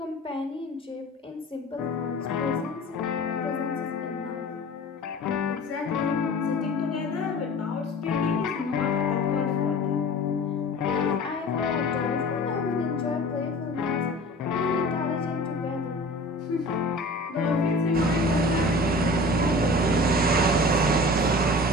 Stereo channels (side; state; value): both; normal; correlation 0.40